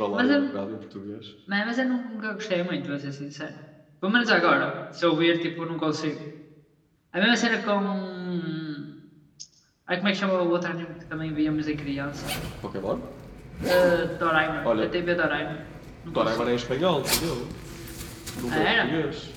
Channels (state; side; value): identical; both; correlation 1.00